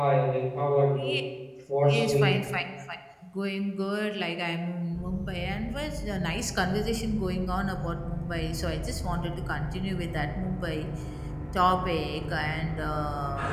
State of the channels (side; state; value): both; identical; correlation 1.00